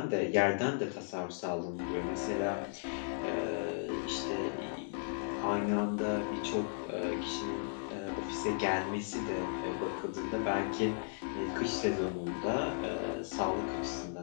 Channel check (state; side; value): silent; right; digital silence